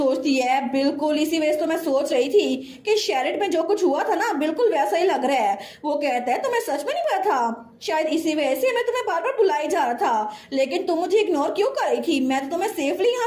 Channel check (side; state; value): both; identical; correlation 1.00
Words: है बिल्कुल इसी वजह से तो मैं सोच रही थी कि शेरिट में जो कुछ हुआ था ना बिल्कुल वैसा ही लग रहा है। वो कहता है तुम्हें सच में नहीं पता था, शायद इसी वजह से मैं तुम्हें बार बार बुलाई जा रहा था, लेकिन तुम मुझे इग्नोर क्यों कर रही थी। मैं तो तुम्हें सेफली